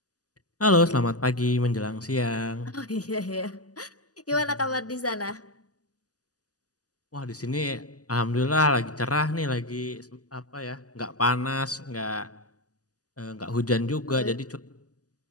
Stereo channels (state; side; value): late; right; 0.67 ms